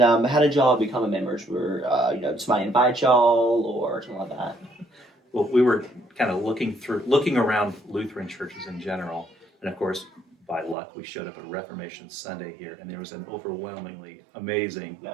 how did y'all become members? Were somebody invite y'all or something like that? Well, we were kind of looking around Lutheran churches in general, and of course, by luck, we showed up at Reformation Sunday here, and there was an overwhelmingly amazing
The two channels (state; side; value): drops out; left; at 10.8 s